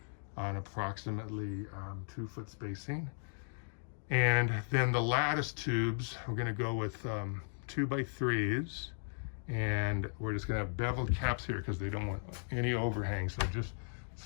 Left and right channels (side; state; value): right; silent; digital silence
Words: on approximately 2 foot spacing. And then the lattice tubes, we're going to go with 2x3s, and we're just going to have beveled caps here because they don't want any overhang. So just